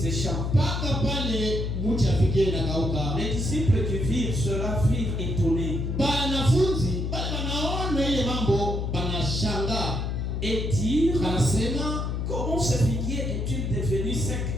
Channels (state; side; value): noise; left; hum, 1 dB below the sound